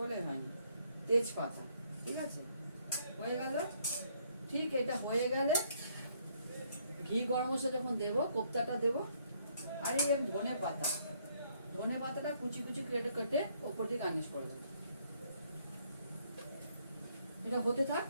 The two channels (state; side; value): inverted; both; correlation -0.68